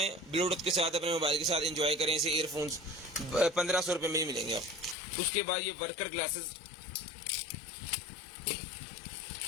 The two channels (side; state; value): right; drops out; at 5.0 s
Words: ब्लूटूथ के साथ अपने मोबाइल के साथ एंजॉय करें इसे। ईयरफोन्स ₹1500 में ही मिलेंगे आप। उसके बाद ये वर्कर ग्लासेस,